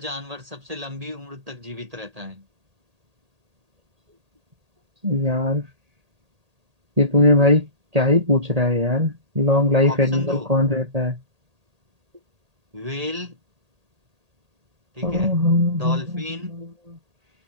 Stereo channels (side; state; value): left; late; 1.8 ms